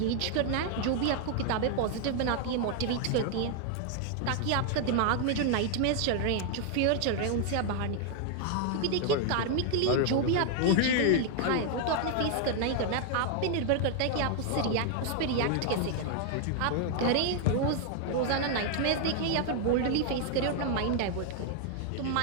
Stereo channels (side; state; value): both; different; correlation 0.00